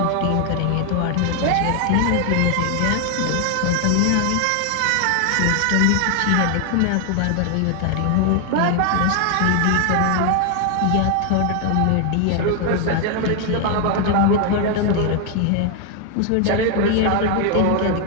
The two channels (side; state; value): both; different; correlation 0.00